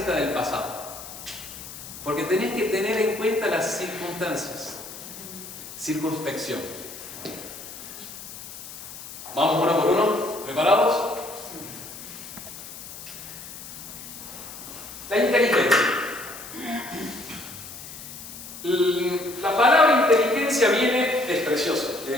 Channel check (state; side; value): noise; left; hiss, 13 dB below the sound